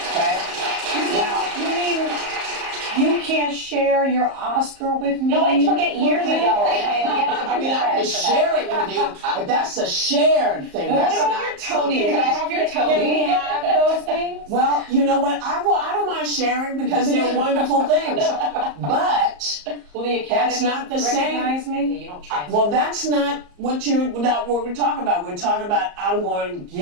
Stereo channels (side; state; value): left; late; 34 ms